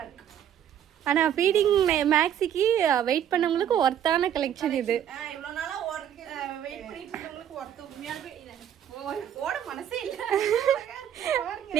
இருக்கு. ஆனா ஃபீடிங் மேக்ஸிக்கு வெயிட் பண்ணவங்களுக்கு ஒர்த்தான கலெக்ஷன் இது. இவ்வளவு நாளா வெயிட் பண்ணிட்டு இருக்கவங்களுக்கு ஒர்த் உண்மையாவே ஓட மனசே இல்ல.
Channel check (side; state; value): left; quieter; 9.9 dB